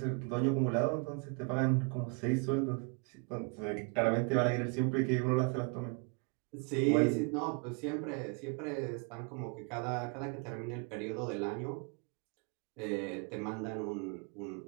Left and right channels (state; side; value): quieter; left; 35.4 dB